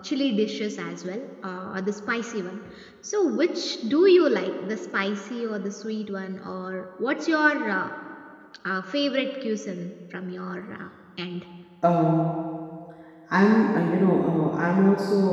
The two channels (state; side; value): identical; both; correlation 1.00